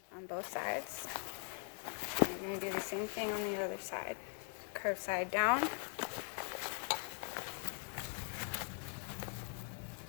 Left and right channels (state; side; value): silent; right; 50 dB below the other